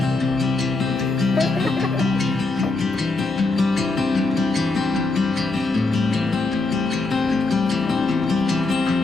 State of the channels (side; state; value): right; quieter; 3.3 dB